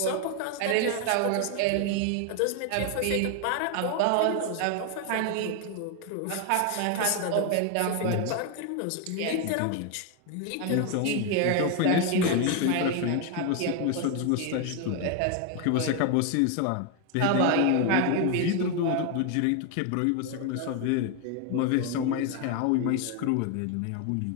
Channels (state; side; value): different; both; correlation 0.01